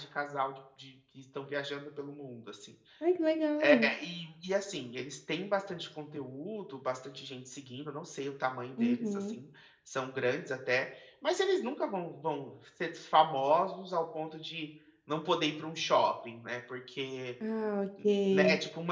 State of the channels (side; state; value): both; identical; correlation 1.00